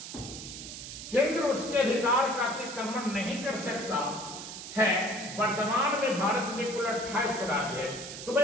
केंद्र उसके अधिकार का अतिक्रमण नहीं कर सकता है। वर्तमान में भारत में कुल 28 राज्य है। तो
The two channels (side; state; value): right; noise; hiss, 10 dB below the sound